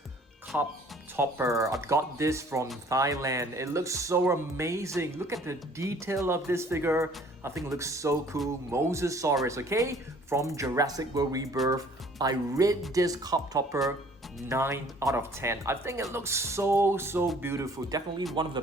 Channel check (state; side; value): normal; both; correlation 0.55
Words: cup topper. I got this from Thailand. It looks so amazing. Look at the detail of this figure. I think it looks so cool. Mosasaurus, okay, from Jurassic World Rebirth. I rate this cup topper 9 out of 10. I think it looks so beautiful. Definitely one of the